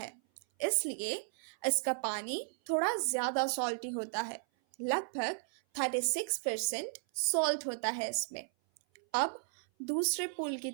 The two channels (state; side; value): silent; left; 55 dB below the other